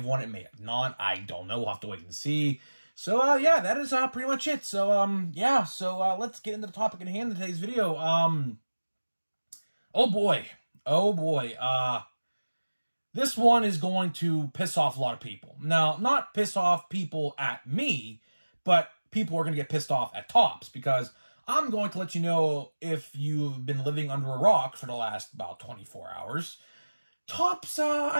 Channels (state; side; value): inverted; both; correlation -1.00